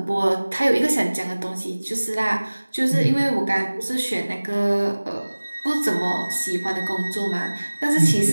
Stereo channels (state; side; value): inverted; both; correlation -1.00